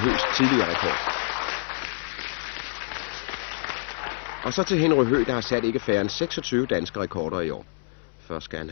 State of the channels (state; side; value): silent; right; 61 dB below the other